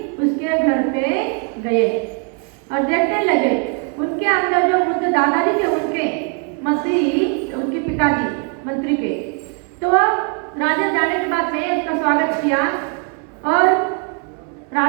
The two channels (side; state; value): left; quieter; 38.3 dB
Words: उसके घर पे गए और देखने लगे। उनके अंदर जो बुद्ध दादाजी थे, उनके मंत्री, उनके पिताजी मंत्री के, तो राजा जाने के बाद में उसका स्वागत किया और